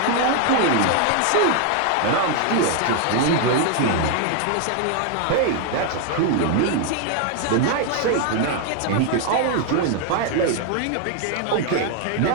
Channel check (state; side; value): different; both; correlation 0.00